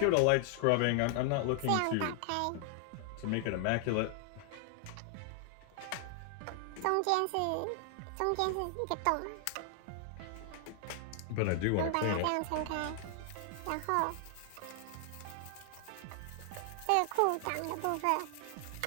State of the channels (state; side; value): different; both; correlation 0.00